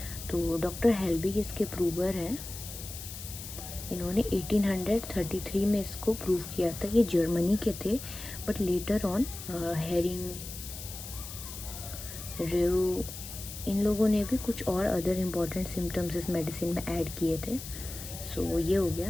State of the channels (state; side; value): noise; left; hiss, 11 dB below the sound